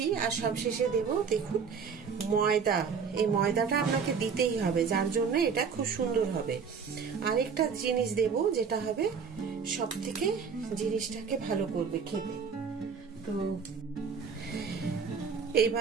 আর সব শেষে দেব দেখুন ময়দা। এই ময়দাটা আপনাকে দিতেই হবে, যার জন্য এটা খুব সুন্দর হবে। আরেকটা জিনিস দেব যেটা হবে সব থেকে জিনিসটাকে ভালো করবে খেতে। তো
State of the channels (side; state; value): left; quieter; 6.0 dB